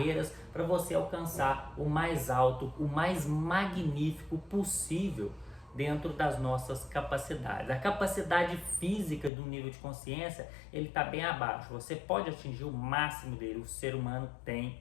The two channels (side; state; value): right; drops out; at 9.3 s